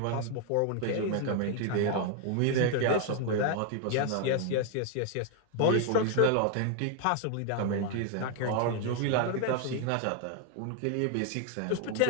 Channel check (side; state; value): both; different; correlation 0.00